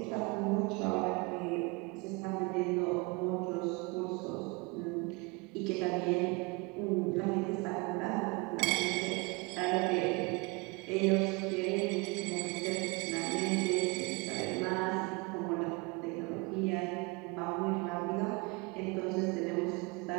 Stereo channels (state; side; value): quieter; left; 27.7 dB